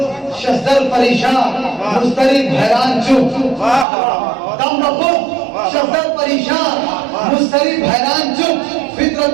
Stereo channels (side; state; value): left; drops out; at 3.9 s